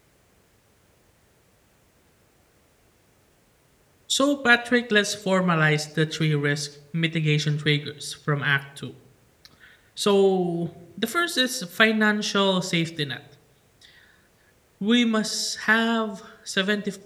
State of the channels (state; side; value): identical; both; correlation 1.00